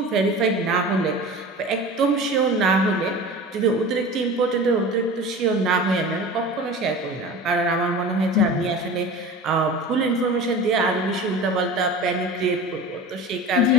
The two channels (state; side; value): normal; both; correlation 0.35